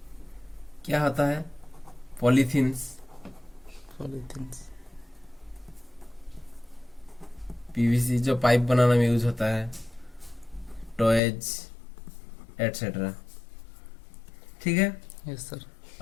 क्या होता है? Polythenes, polythenes. पीवीसी जो पाइप बनाने में यूज होता है, टॉयज एटसेट्रा, ठीक है। Yes sir.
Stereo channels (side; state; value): right; drops out; at 11.2 s